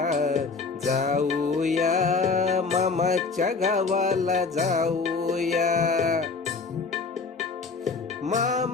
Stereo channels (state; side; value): quieter; right; 4.5 dB